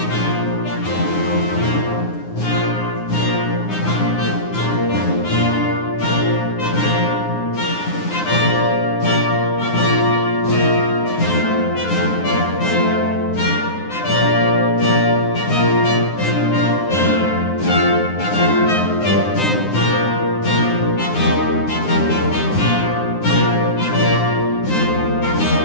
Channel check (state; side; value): late; right; 9.6 ms